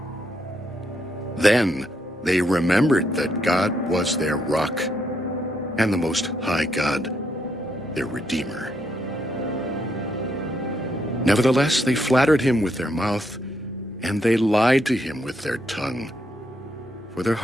Then they remembered that God was their rock, and the Most High God, their Redeemer. Nevertheless, they flattered him with their mouth, and they lied to him with their tongue. For their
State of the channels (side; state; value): both; normal; correlation 0.76